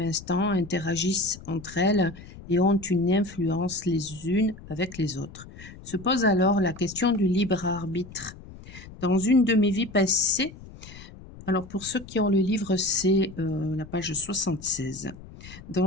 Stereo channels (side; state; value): left; noise; rumble, 17 dB below the sound